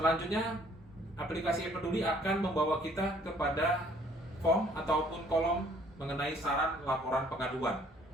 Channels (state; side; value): normal; both; correlation 0.60